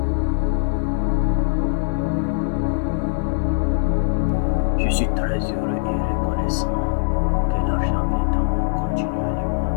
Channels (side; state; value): right; silent; digital silence